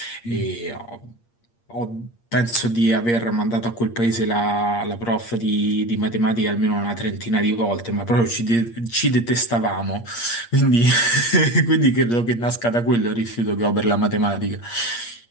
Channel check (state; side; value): late; right; 8.6 ms